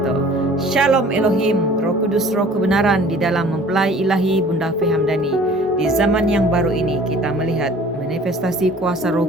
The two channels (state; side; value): normal; both; correlation 0.49